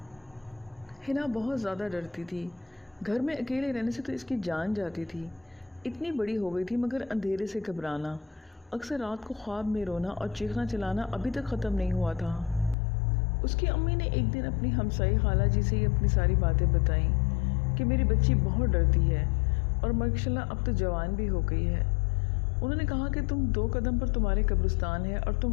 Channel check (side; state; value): right; drops out; at 12.8 s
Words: ہنا بہت زیادہ ڈرتی تھی۔ گھر میں اکیلے رہنے سے تو اس کی جان جاتی تھی۔ اتنی بڑی ہو گئی تھی مگر اندھیرے سے گھبرانا، اکثر رات کو خواب میں رونا اور چیخنا چلانا ابھی تک ختم نہیں ہوا تھا۔ اس کی امی نے ایک دن اپنی ہمسائی خالہ جی سے اپنی ساری باتیں بتائیں کہ میری بچی بہت ڈرتی ہے اور ماشاءاللہ اب تو جوان بھی ہو گئی ہے۔ انہوں نے کہا کہ تم 2 قدم پر تمہارے قبرستان ہے اور